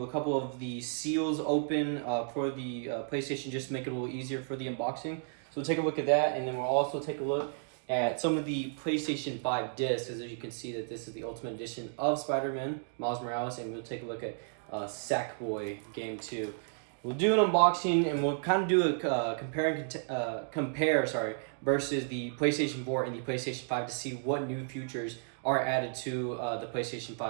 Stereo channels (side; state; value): left; silent; digital silence